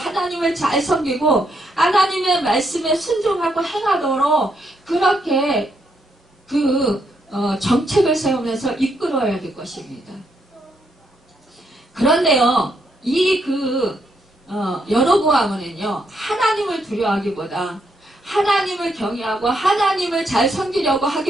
하나님을 잘 섬기고 하나님의 말씀에 순종하고 행하도록 그렇게 정책을 세우면서 이끌어야 될 것입니다. 그런데요, 여로보암은요, 하나님을 두려워하기보다 하나님을 경외하고 하나님을 잘 섬기려고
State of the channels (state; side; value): normal; both; correlation 0.77